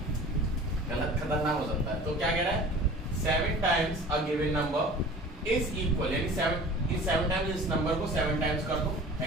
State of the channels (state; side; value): normal; both; correlation 0.42